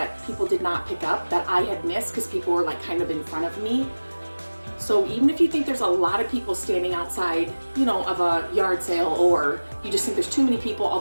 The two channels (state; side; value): inverted; both; correlation -1.00